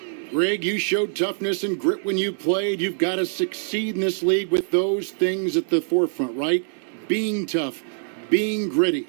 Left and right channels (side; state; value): left; silent; digital silence